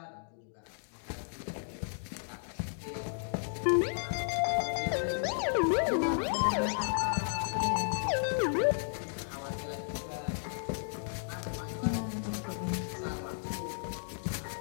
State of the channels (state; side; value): silent; right; digital silence